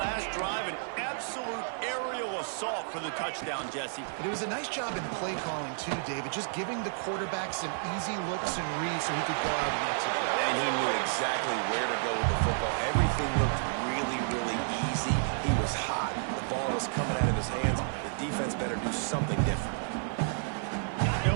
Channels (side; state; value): left; silent; 57 dB below the other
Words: last drive, an absolute aerial assault for the touchdown, Jesse. But it was a nice job in play calling, too, David, just giving the quarterback some easy looks and reads so he could go out and execute. And he knew exactly where to go with the football. Everything looked really, really easy. He was hot. The ball was coming out of his hands. The defense better do something different.